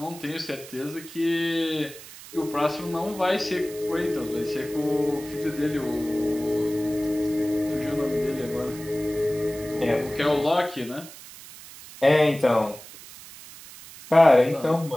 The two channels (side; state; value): right; noise; hiss, 17 dB below the sound